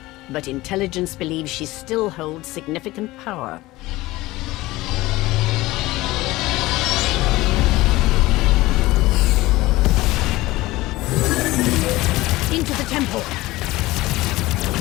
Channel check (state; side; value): quieter; right; 18.8 dB